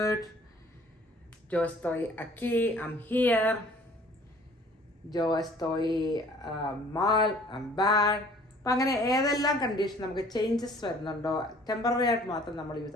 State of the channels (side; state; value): both; normal; correlation 0.53